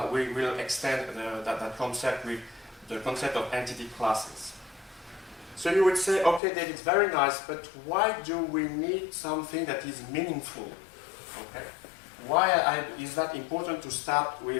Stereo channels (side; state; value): right; drops out; at 6.4 s